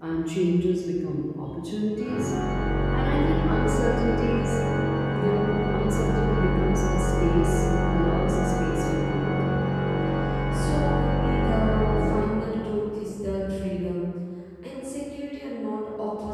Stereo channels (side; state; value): both; identical; correlation 1.00